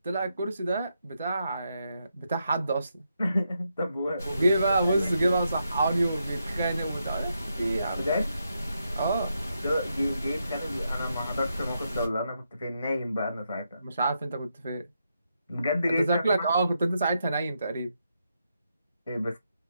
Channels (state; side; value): inverted; both; correlation -0.82